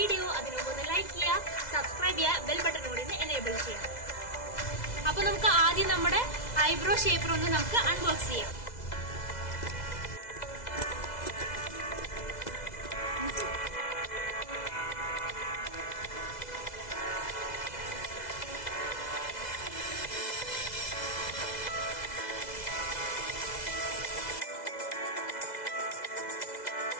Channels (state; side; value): late; right; 2.0 ms